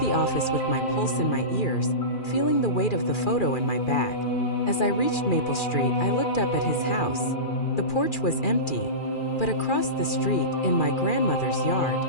office with my pulse in my ears, feeling the weight of the photo in my bag. As I reached Maple Street, I looked up at his house. The porch was empty, but across the street, in my grandmother's yard,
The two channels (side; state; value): right; late; 2.4 ms